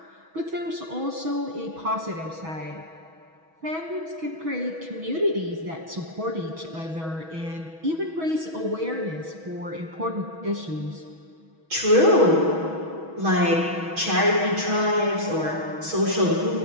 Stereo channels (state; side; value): late; left; 6.2 ms